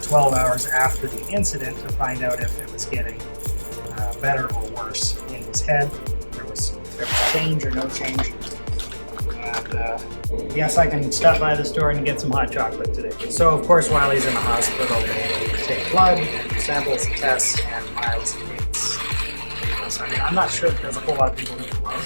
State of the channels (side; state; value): both; inverted; correlation -1.00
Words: 12 hours after the incident to find out if it was getting better or worse in his head. There was change or no change. And yes, I can stop by the store and get some hot chocolate today. So of course, while he's in the hospital, they take blood and do samples and tests, and Myles hates needles. I mean, I'm not sure that there's a whole lot of people who